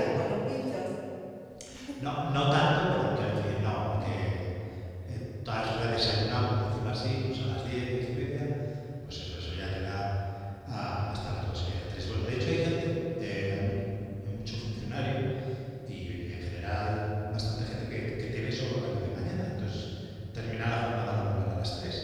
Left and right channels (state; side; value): identical; both; correlation 1.00